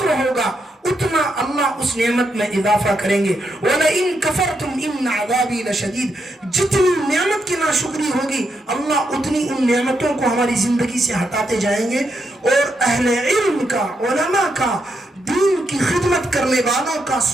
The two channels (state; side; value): normal; both; correlation 0.81